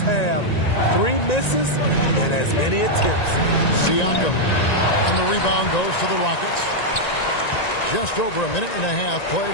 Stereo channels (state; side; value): late; right; 1.9 ms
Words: 3 misses and as many attempts. Siakam. And the rebound goes to the Rockets. Just over a minute and a half played